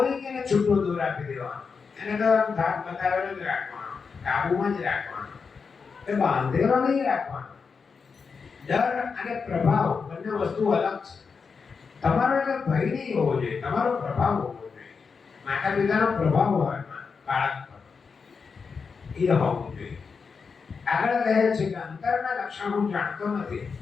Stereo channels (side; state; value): right; quieter; 5.3 dB